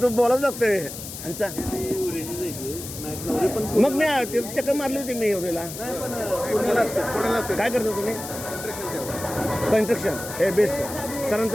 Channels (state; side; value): noise; left; hiss, 10 dB below the sound